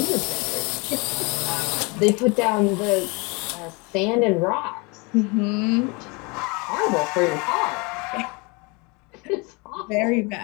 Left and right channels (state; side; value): quieter; right; 28.9 dB